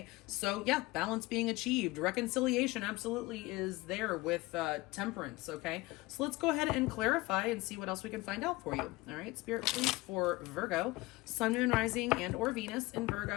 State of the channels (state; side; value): quieter; right; 21.4 dB